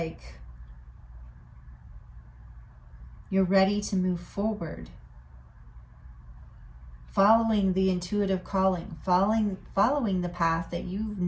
you're ready to move forward, following the intuitive calling, following the path that you've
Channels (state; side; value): identical; both; correlation 1.00